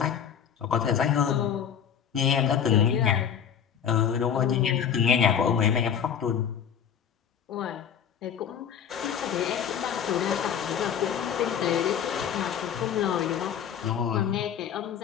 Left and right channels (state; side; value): quieter; right; 8.4 dB